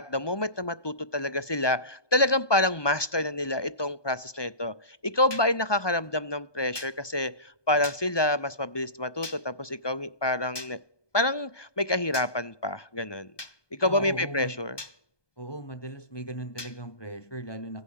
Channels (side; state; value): right; late; 1.2 ms